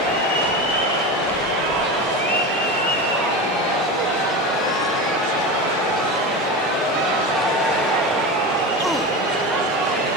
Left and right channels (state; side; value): normal; both; correlation 0.24